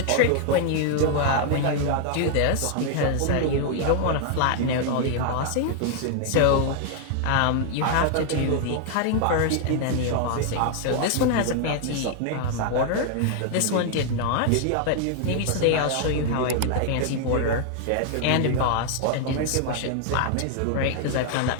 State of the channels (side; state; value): both; different; correlation 0.00